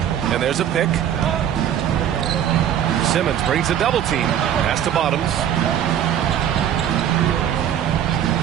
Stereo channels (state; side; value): quieter; left; 10.0 dB